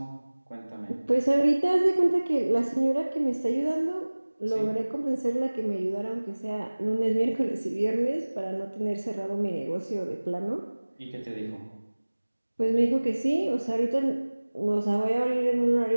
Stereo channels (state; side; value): inverted; both; correlation -1.00